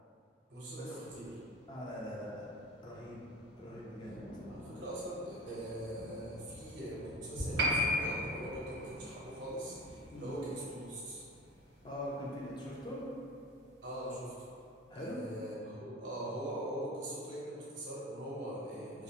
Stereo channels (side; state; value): both; normal; correlation 0.33